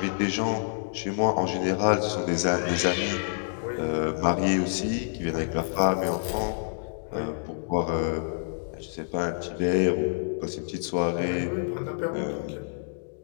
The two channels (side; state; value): right; silent; digital silence